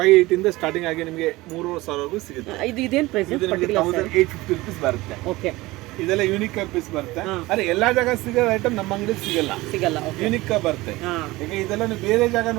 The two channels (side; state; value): left; quieter; 19.9 dB